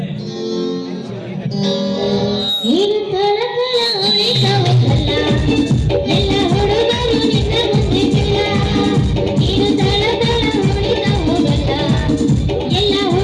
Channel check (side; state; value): both; identical; correlation 1.00